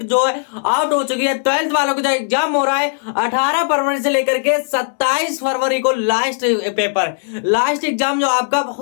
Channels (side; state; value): right; silent; digital silence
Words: जो है आउट हो चुकी है। 12th वालों को जो एग्जाम हो रहा है 18 फरवरी से लेकर के 27 फरवरी को लास्ट एग्जाम जो आपका